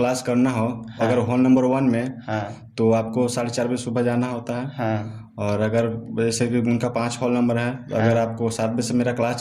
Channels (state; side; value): identical; both; correlation 1.00